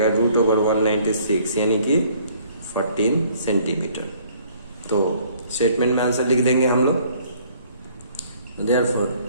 √196 यानी कि 14 सेंटीमीटर। तो स्टेटमेंट में आंसर लिख देंगे हम लोग। Therefore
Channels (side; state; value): both; inverted; correlation -0.59